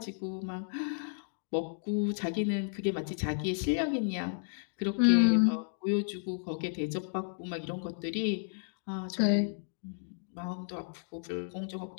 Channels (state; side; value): silent; right; digital silence